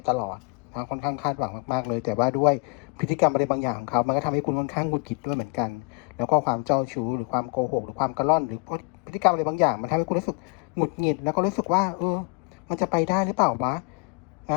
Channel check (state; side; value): quieter; right; 33.0 dB